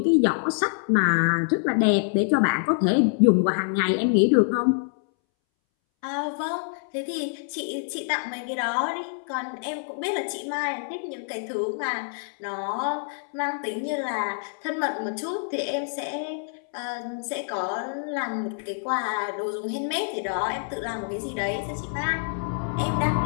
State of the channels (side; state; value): right; silent; 61 dB below the other